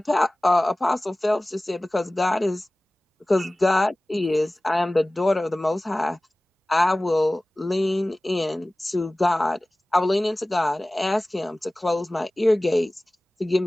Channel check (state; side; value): normal; both; correlation 0.98